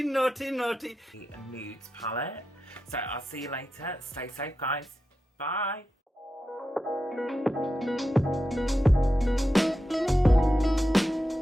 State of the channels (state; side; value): normal; both; correlation 0.89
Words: naughty nudes palette. So I'll see you later. Stay safe, guys. Bye.